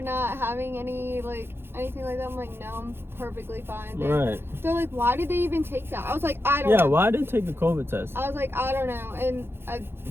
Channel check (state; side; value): late; left; 0.11 ms